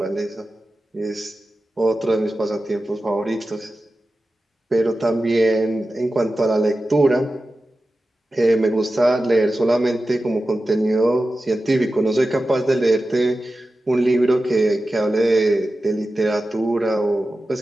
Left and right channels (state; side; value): normal; both; correlation 0.94